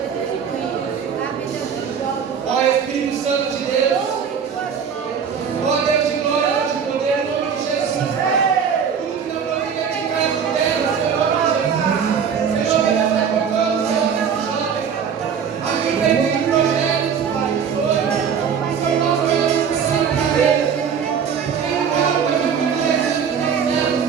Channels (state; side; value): quieter; left; 7.1 dB